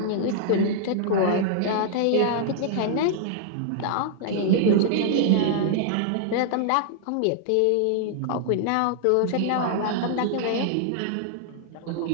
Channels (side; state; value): both; different; correlation -0.01